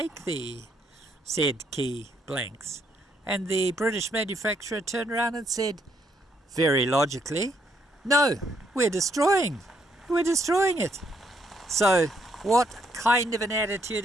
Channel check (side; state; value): both; normal; correlation 0.73